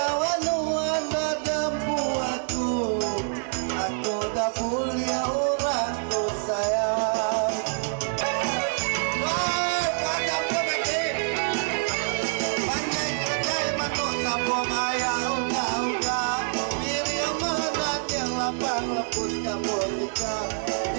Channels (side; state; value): left; silent; 61 dB below the other